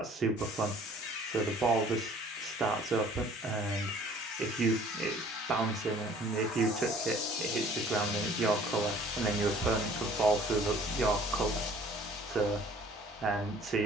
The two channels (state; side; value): normal; both; correlation 0.53